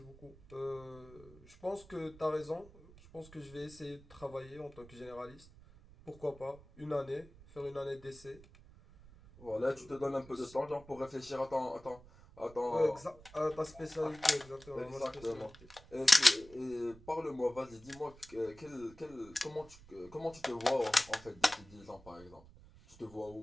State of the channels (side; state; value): right; noise; rumble, 21 dB below the sound